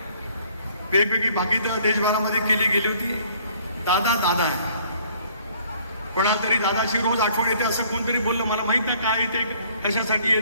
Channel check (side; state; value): both; inverted; correlation -0.59